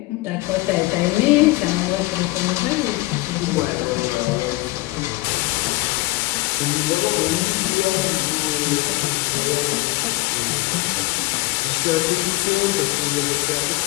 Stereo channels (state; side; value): quieter; right; 21.4 dB